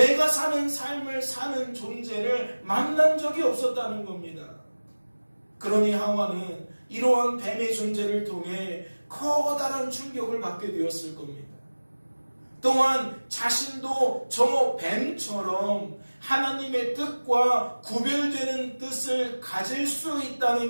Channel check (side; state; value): both; inverted; correlation -1.00